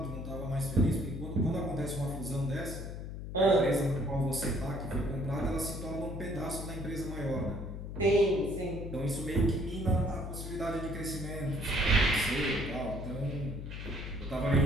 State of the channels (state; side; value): noise; left; hum, 7 dB below the sound